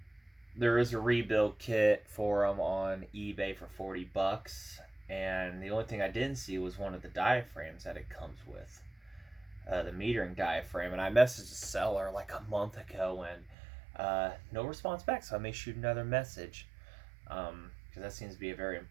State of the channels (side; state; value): left; drops out; at 13.6 s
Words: there is a rebuild kit for them on eBay for 40 bucks. And the only thing I didn't see was one of the diaphragms that it comes with, the metering diaphragm. And I messaged the seller like a month ago, and no response back. So I may shoot another message, because that seems to be a very